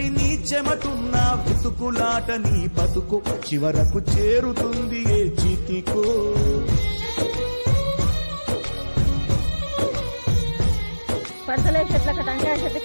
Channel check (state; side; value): inverted; both; correlation -1.00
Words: నీ చెమటున్న వెతుకులాట నీ బతుకు చివరకు చేరుతుంది ఏ చితికో పడతలే చెట్ల టంకాయ